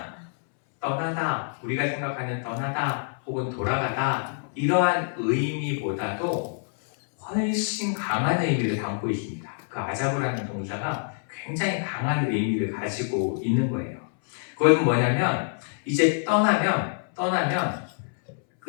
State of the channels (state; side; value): silent; right; 61 dB below the other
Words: 떠나다, 우리가 생각하는 떠나다 혹은 돌아가다, 이러한 의미보다도 훨씬 강한 의미를 담고 있습니다. 그 아자브라는 동사가 굉장히 강한 의미를 가지고 있는 거예요. 그것은 뭐냐면 이제 떠나면